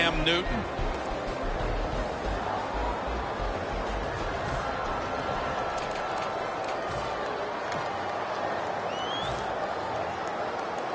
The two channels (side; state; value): both; identical; correlation 1.00